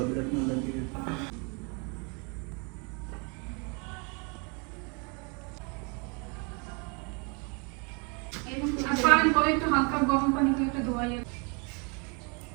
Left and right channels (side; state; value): left; quieter; 33.7 dB